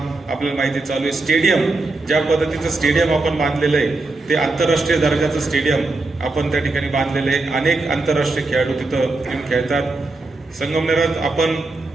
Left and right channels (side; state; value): left; quieter; 3.3 dB